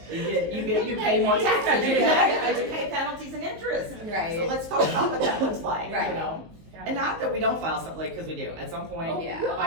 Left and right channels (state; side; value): late; left; 19 ms